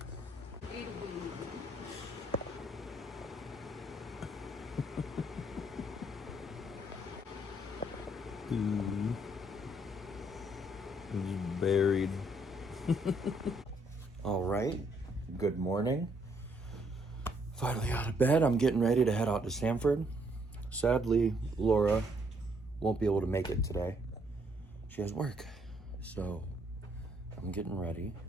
He's buried. All right. Good morning. Finally out of bed. I'm getting ready to head out to Sanford. Sadly, Laura won't be able to make it today. She has work. So I'm getting ready.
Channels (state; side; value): normal; both; correlation 0.70